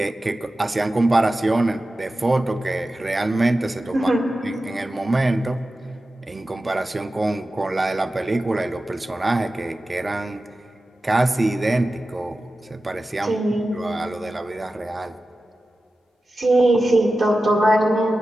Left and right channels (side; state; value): both; normal; correlation 0.94